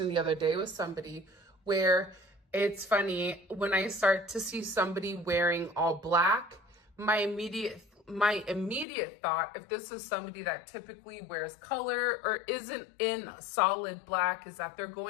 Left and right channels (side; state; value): right; drops out; at 8.8 s